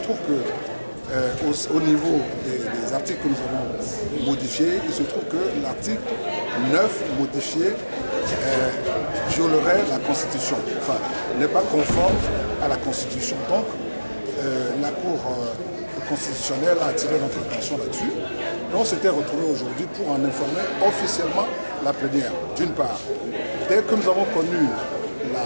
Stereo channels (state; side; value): inverted; both; correlation -1.00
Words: que au niveau des articles que nous avons modifiés, il se trouve que l'article 9 modifié violerait la Constitution, enfin n'est pas conforme à la Constitution. Donc la Cour constitutionnelle a attiré notre attention là-dessus et on s'était retrouvé aujourd'hui pour en informer officiellement la plénière. D'une part, dès que nous avons connu